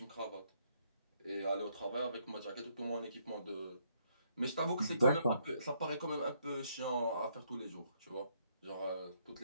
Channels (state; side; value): inverted; both; correlation -0.72